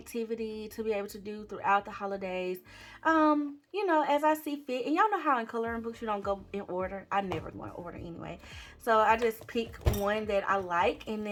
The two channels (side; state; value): both; identical; correlation 1.00